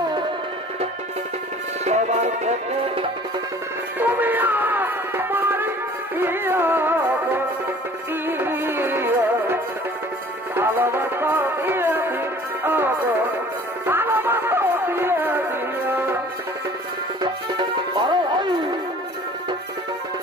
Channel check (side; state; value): both; normal; correlation 0.49